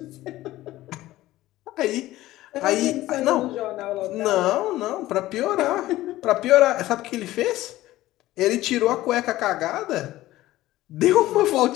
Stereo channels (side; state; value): right; quieter; 16.1 dB